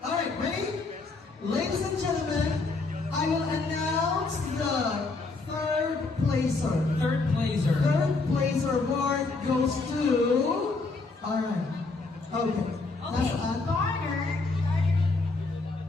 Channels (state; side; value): quieter; right; 3.7 dB